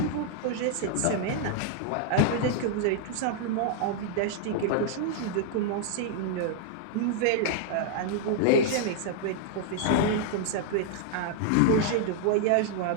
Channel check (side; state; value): both; different; correlation -0.01